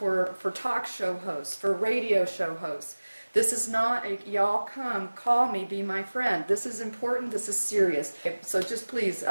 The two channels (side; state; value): both; inverted; correlation -1.00